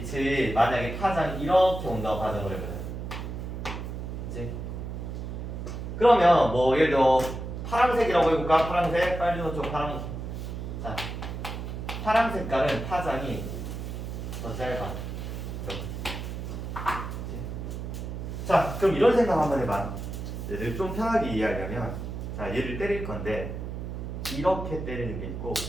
만약에 파장이 이렇게 온다고 가정을 해보자. 그치? 그러면 뭐 예를 들어 파란색이라고 해볼까? 파란색, 빨주노초, 파란. 자, 파란 색깔은 파장이 더 짧아. 이렇게. 자, 그럼 이런 생각 한번 해봐. 얘를 좀 편하게 이해하려면, 자, 얘를 때릴 건데 이렇게 때리는 게 있고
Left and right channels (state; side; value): noise; right; hum, 6 dB below the sound